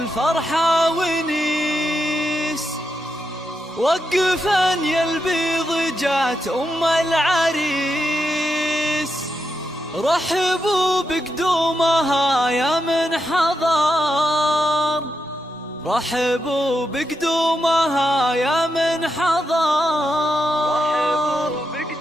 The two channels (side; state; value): both; normal; correlation 0.85